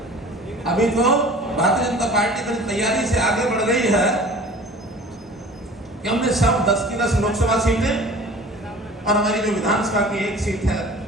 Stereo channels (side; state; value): both; normal; correlation 0.43